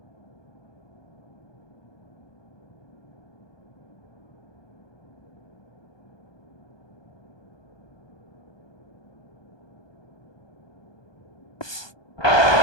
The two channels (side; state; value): right; late; 1.2 ms